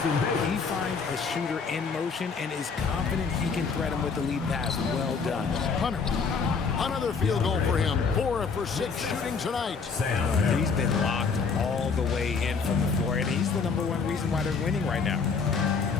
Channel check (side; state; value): right; quieter; 5.2 dB